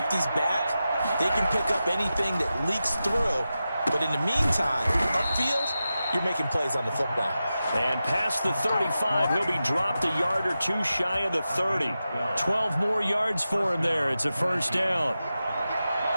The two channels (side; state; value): both; inverted; correlation -0.92